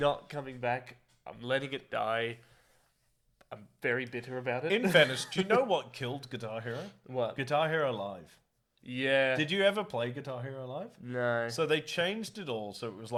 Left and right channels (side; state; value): both; identical; correlation 1.00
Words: coming back. I'm letting it die. I'm very bitter about it. in fairness, do you know what killed Guitar Hero? What? Guitar Hero Live. Yeah. Did you ever play Guitar Hero Live? No. So they changed it all. So it was